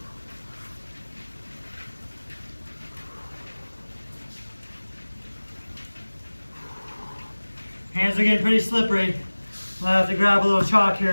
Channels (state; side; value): inverted; both; correlation -1.00